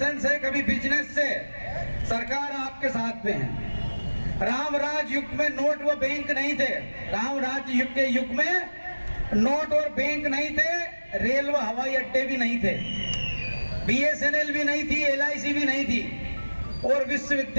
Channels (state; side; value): inverted; both; correlation -1.00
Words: से, कभी बिजनेस से। सरकार आपके साथ में है। राम राज युग में नोट व बैंक नहीं थे। राम राज युग के युग में नोट और बैंक नहीं थे, रेल व हवाई अड्डे भी नहीं थे, बीएसएनएल भी नहीं थी, एलआईसी भी नहीं थी, और